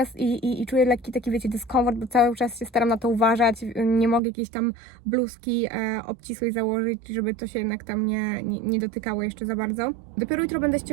i czuję lekki taki, wiecie, dyskomfort, bo cały czas się staram na to uważać. Nie mogę jakiejś tam bluzki obcisłej założyć, żeby to się jednak tam nie dotykało jeszcze za bardzo. Dopiero jutro będę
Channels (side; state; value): left; drops out; at 4.2 s